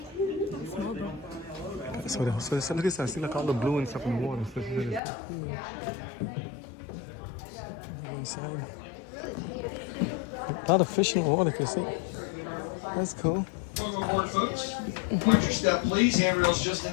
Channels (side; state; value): right; drops out; at 5.0 s